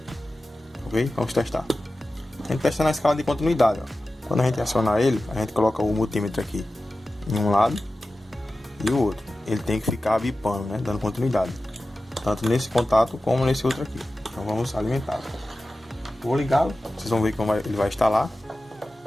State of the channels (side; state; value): both; normal; correlation 0.95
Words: Ok? Vamos testar. A gente testa na escala de continuidade, ó. Quando a gente acionar ele, a gente coloca o multímetro aqui em um lado e o outro. Ele tem que ficar bipando, né? Dando continuidade. Tanto nesse contato como nesse outro aqui. Então vamos alimentar. Vou ligá-lo, vocês vão ver como ele vai instalar.